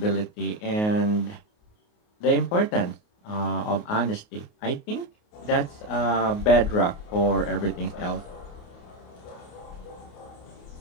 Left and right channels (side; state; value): right; late; 28 ms